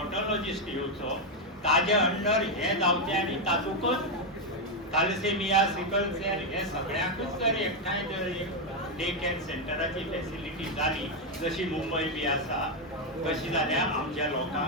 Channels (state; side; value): normal; both; correlation 0.04